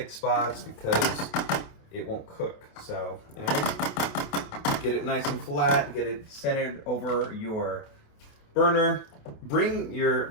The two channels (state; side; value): late; right; 28 ms